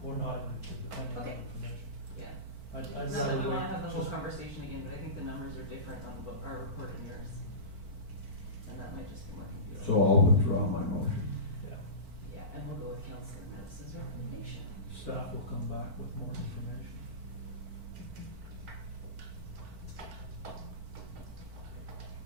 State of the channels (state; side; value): late; left; 4.5 ms